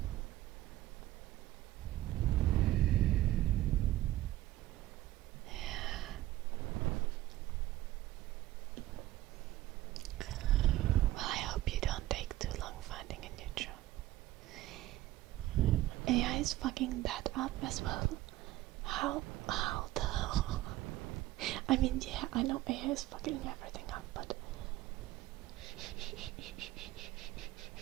Well, I hope you don't take too long finding a new job. AI is fucking that up as well. How the hell? I mean, yeah, I know AI is fucking everything up, but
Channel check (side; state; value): left; quieter; 15.9 dB